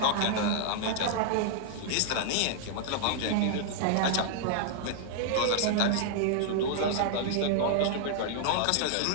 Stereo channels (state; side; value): different; both; correlation -0.01